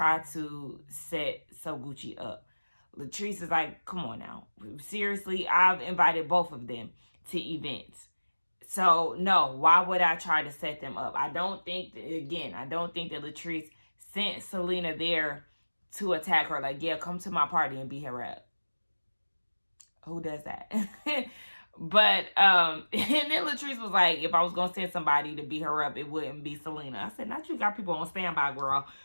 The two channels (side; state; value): both; inverted; correlation -1.00